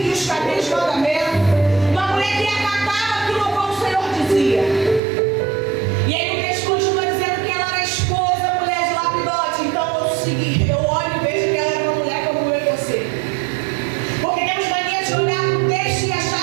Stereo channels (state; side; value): drops out; left; at 5.0 s